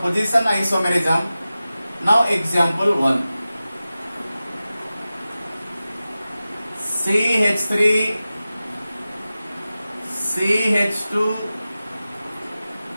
isomerism. Now example 1. CH3, CH2,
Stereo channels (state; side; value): inverted; both; correlation -0.95